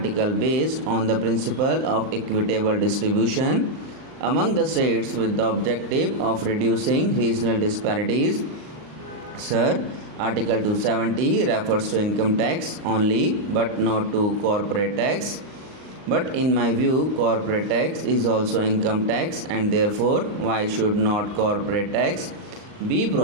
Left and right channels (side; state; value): left; late; 38 ms